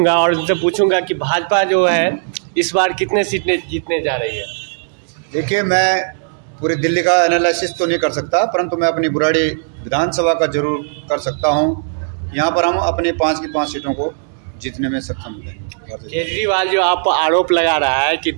और उनसे पूछूंगा कि भाजपा जो है इस बार कितने सीटें जीतने जा रही है। देखिए, मैं पूरी दिल्ली का एनालिसिस तो नहीं कर सकता, परंतु मैं अपनी बुराड़ी विधानसभा का जरूर कर सकता हूं। यहां पर हम अपने 5 की 5 सीटों को जीतने में सक्षम हैं। केजरीवाल जो आप आरोप लगा रहा है कि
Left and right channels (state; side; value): silent; left; digital silence